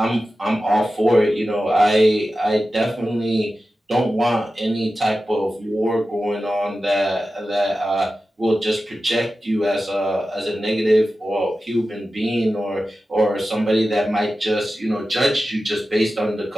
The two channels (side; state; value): both; normal; correlation 0.94